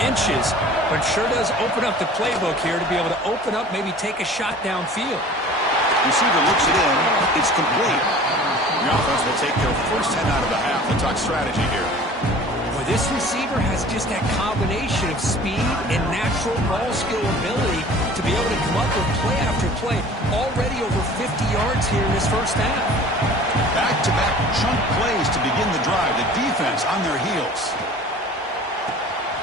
inches, but sure does open up the playbook here to be able to open up, maybe take a shot downfield. Receiver looks it in. It's complete. The offense will take their first 10 out of the half. We'll talk strategy here. Boy, this receiver has just that combination of speed and natural ball skill ability to be able to come up with play after play. Already over 50 yards here in this first half. Back-to-back chunk plays to begin the drive. The defense on their heels.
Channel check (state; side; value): normal; both; correlation 0.45